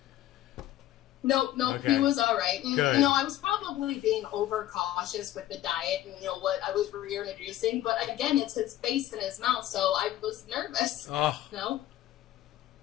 Nope, Okay. He was all right. And, Good. I was probably being overcautious with the diet and, what I was reintroducing. But again, it's his face and his mouth, so I was nervous. Oh, No?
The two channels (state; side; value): quieter; right; 13.8 dB